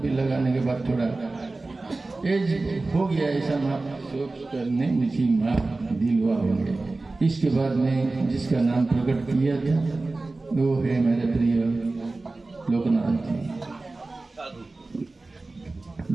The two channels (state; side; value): quieter; left; 3.3 dB